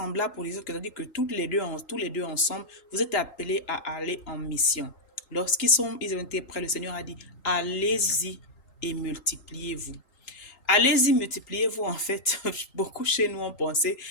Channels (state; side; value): late; right; 3.8 ms